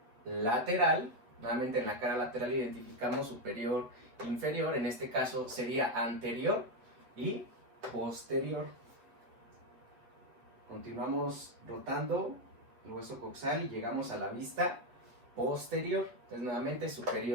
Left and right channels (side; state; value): left; late; 8.2 ms